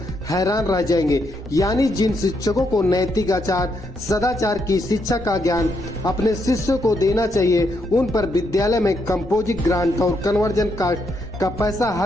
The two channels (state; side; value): normal; both; correlation 0.77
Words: हैरान रह जाएंगे। यानी जिन शिक्षकों को नैतिक आचार सदाचार की शिक्षा का ज्ञान अपने शिष्यों को देना चाहिए, उन पर विद्यालय में कंपोजिट ग्रांट और कन्वर्जन कास्ट का पैसा